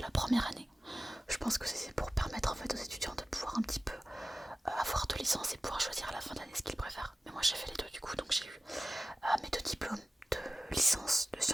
la première année. Je pense que c'est pour permettre en fait aux étudiants de pouvoir un petit peu avoir 2 licences et pouvoir choisir à la fin de l'année ce qu'ils préfèrent. Mais moi j'ai fait les 2 du coup, donc j'ai eu mes 2 diplômes de licence de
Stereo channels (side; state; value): both; normal; correlation 0.96